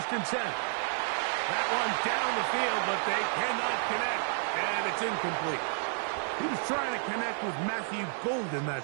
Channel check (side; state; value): left; silent; digital silence